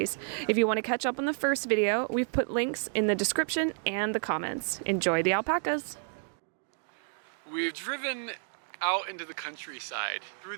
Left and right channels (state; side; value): silent; left; 57 dB below the other